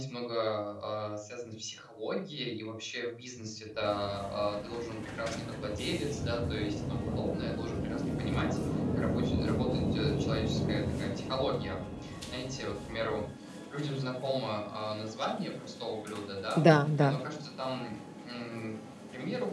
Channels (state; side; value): identical; both; correlation 1.00